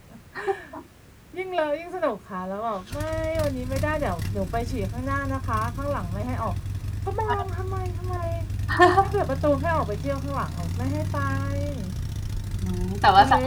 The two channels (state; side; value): identical; both; correlation 1.00